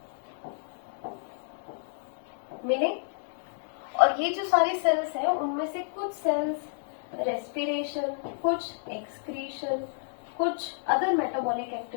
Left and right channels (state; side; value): silent; right; digital silence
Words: मिले। और ये जो सारे सेल्स हैं उनमें से कुछ सेल्स रेस्पिरेशन, कुछ एक्सक्रीशन, कुछ अदर मेटाबॉलिक